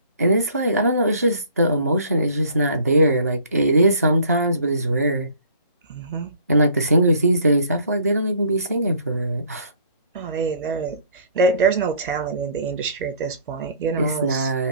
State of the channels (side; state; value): both; inverted; correlation -0.55